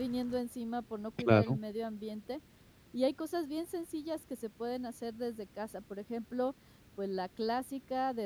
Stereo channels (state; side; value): identical; both; correlation 1.00